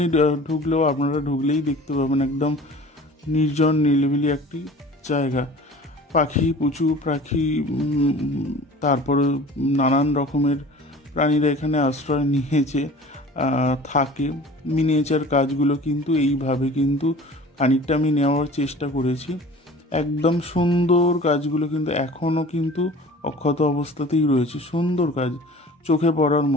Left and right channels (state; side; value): normal; both; correlation 0.43